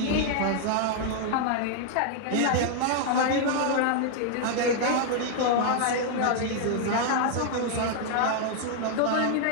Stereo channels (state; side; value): different; both; correlation 0.00